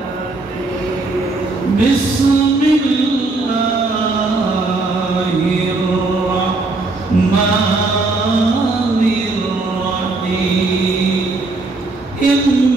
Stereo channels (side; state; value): left; quieter; 3.3 dB